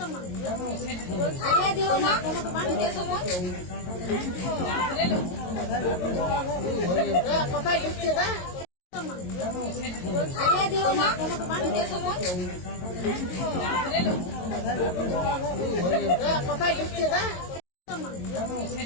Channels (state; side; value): late; right; 22 ms